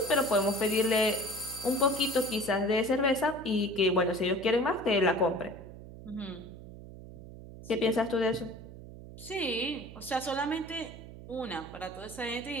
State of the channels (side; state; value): right; noise; hum, 15 dB below the sound